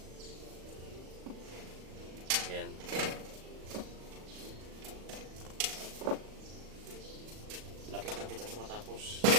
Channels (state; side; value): late; left; 38 ms